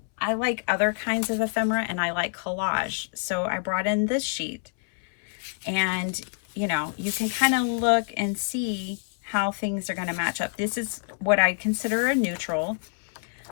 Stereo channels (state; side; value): silent; right; 60 dB below the other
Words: like other kinds of ephemera and I like collage. So I brought in this sheet, and you know, you can kind of look and see how things are going to match up. This is what I consider a neutral,